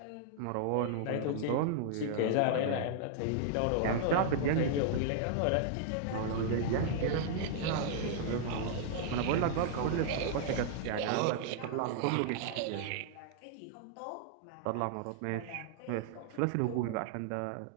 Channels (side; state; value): both; different; correlation -0.01